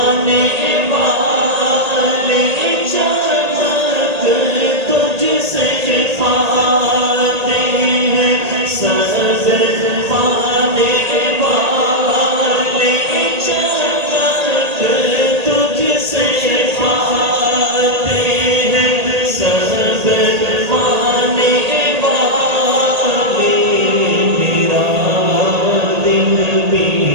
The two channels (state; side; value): late; left; 1.8 ms